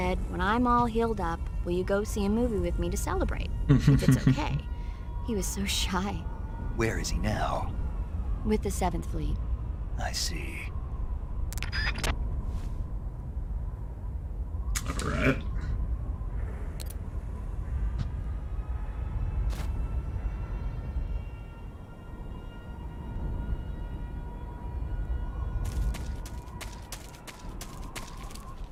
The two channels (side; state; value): both; identical; correlation 1.00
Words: when I'm all healed up, will you go see a movie with me to celebrate? If it's okay. He was so shy. Where is he now? with the 7th Fleet. I see. All right.